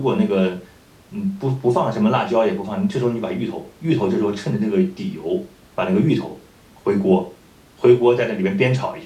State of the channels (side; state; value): both; identical; correlation 1.00